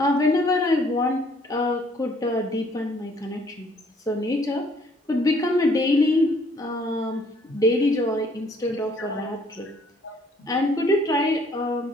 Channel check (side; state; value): both; normal; correlation 0.62